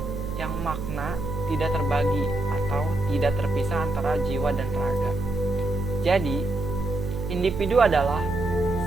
yang makna tidak terbagi atau tidak terpisah antara jiwa dan raga. Jadi, individu adalah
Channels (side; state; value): right; noise; hum, 7 dB below the sound